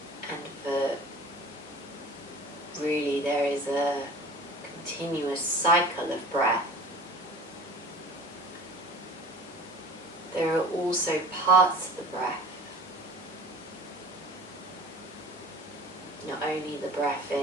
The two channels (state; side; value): normal; both; correlation 0.42